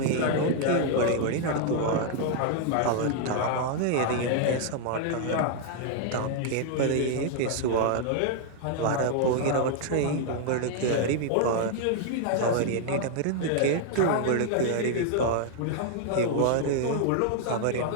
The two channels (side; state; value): both; different; correlation 0.00